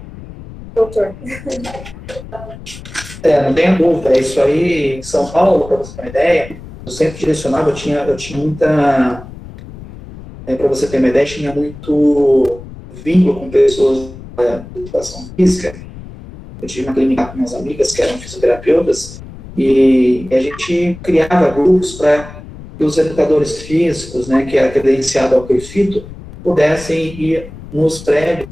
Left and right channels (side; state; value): left; noise; rumble, 15 dB below the sound